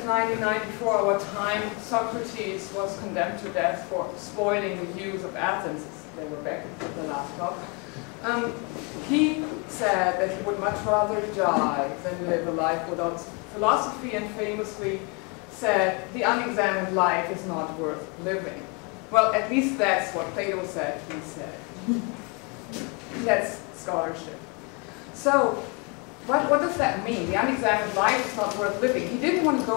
before our time, Socrates was condemned to death for spoiling the use of Athens, they were back at the last talk, he said that he would much rather die than live a life without philosophy, and famously said, the unexamined life is not worth living. Well, at least that's what Plato said, he said. That's scholarship. So, what does that mean? The unexamined life is not worth living. He didn't want to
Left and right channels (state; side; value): quieter; right; 31.4 dB